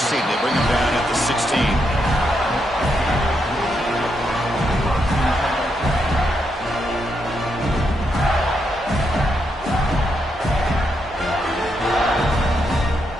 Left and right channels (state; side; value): normal; both; correlation 0.81